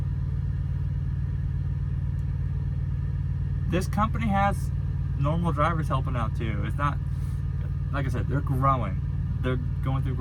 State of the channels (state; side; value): identical; both; correlation 1.00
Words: This company has normal drivers helping out too. It's not like I said, they're growing. They're going through